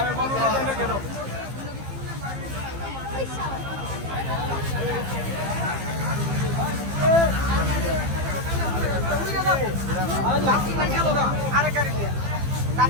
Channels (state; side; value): late; left; 15 ms